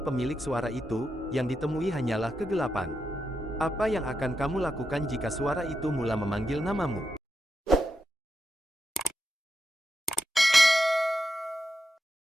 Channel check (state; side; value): normal; both; correlation 0.86